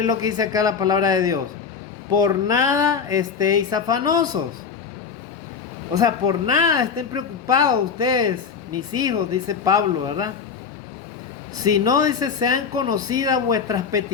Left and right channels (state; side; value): quieter; right; 6.2 dB